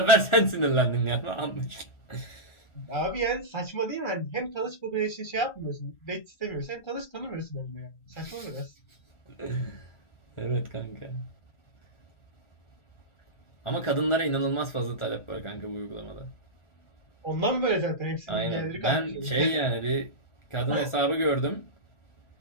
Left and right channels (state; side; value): late; right; 1.4 ms